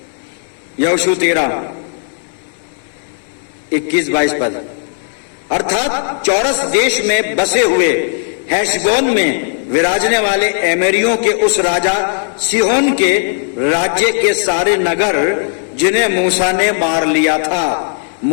यहोशू 13 21-22 पद। अर्थात चौरस देश में बसे हुए हेशबोन में विराजने वाले एमेरियों के उस राजा सिहोन के राज्य के सारे नगर जिन्हें मूसा ने मार लिया था।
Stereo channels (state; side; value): silent; right; digital silence